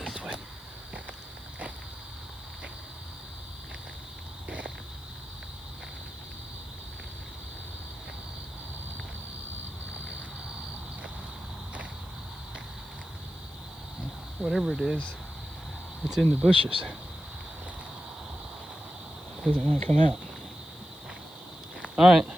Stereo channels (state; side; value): noise; left; hiss, 23 dB below the sound